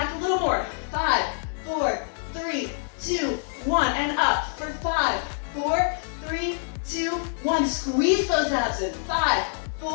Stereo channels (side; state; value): right; silent; 61 dB below the other